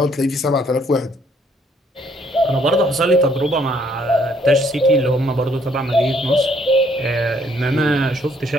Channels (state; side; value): normal; both; correlation 0.66